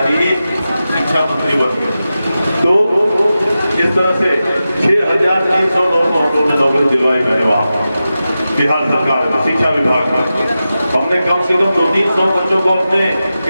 ही शिक्षा मंत्री बन गए। तो इस तरह से 6,300 लोगों को हम लोगों ने नौकरी दिलवाई। मैंने वहाँ बिहार सरकार में शिक्षा विभाग में हमने कम से कम 200-300 बच्चों को अपने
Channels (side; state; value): both; inverted; correlation -0.92